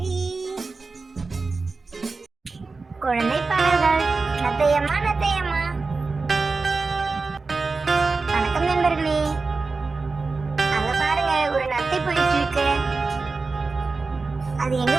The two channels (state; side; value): quieter; left; 4.0 dB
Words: குழந்தை பாடல்கள். நத்தையம்மா நத்தையம்மா. வணக்கம் நண்பர்களே. அங்க பாருங்க, ஒரு நத்தை போயிட்டு இருக்கு. அது எங்க